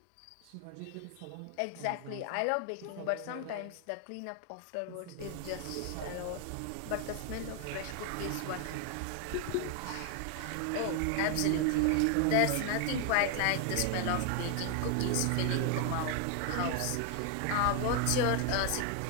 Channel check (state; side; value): different; both; correlation 0.00